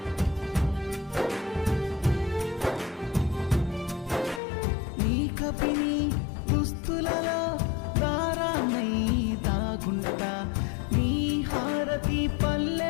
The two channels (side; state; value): right; drops out; at 4.4 s